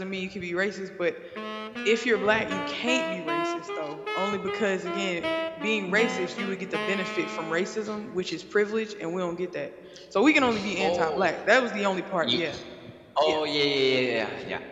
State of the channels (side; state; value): both; identical; correlation 1.00